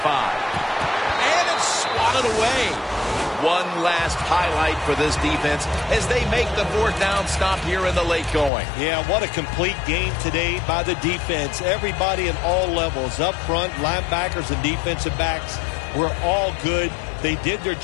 And it's swatted away. One last highlight for this defense as they make the fourth down stop here in the late going. Yeah, what a complete game today by the defense. Everybody at all levels, up front, linebackers and defensive backs were all good. They did their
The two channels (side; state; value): right; drops out; at 8.5 s